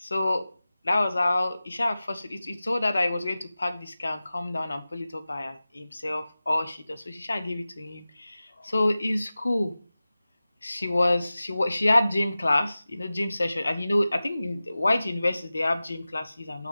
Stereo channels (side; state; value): both; inverted; correlation -0.96